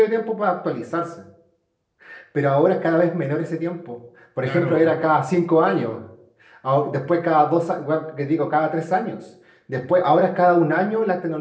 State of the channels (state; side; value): identical; both; correlation 1.00